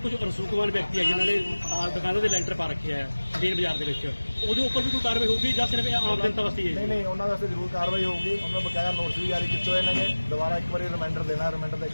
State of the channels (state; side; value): inverted; both; correlation -1.00